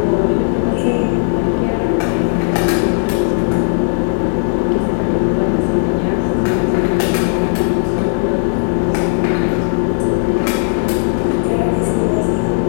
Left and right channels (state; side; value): silent; right; digital silence